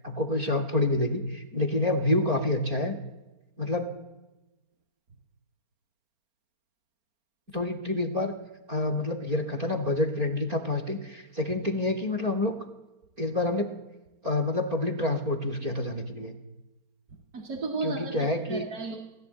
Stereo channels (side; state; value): left; late; 4.3 ms